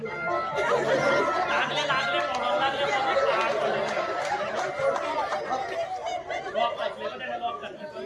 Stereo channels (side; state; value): both; identical; correlation 1.00